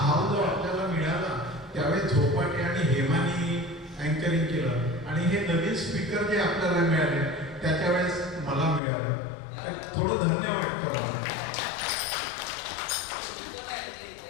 हाव जो आपल्याला मिळाला त्यावेळेस झोपाटे आणि हेमानी अँकरिंग केलं आणि हे नवीन स्पीकर जे आपल्याला मिळाले त्याच्या वेळेस मला मिळालं. तर थोडं धन्य वाटतं मला.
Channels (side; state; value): right; drops out; at 8.8 s